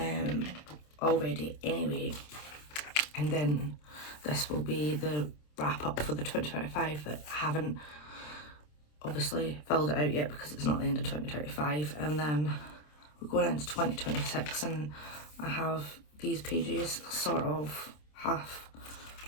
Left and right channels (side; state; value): right; late; 27 ms